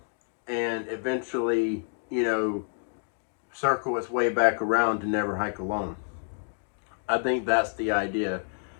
and eventually, circle its way back around to Never Hike Alone. I think that's the idea,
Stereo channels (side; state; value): right; silent; 59 dB below the other